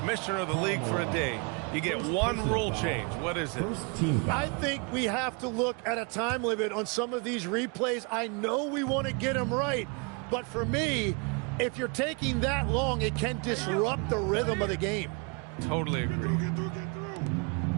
of the league for a day. You get one rule change. What is it? I think we have to look at a time limit on some of these replays. I know we want to get them right, but for me, if you're taking that long, it can disrupt the rhythm of the game. Totally agree.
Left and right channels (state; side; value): quieter; left; 32.9 dB